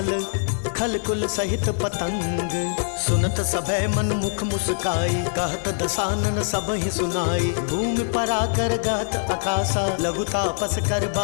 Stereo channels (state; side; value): silent; right; 59 dB below the other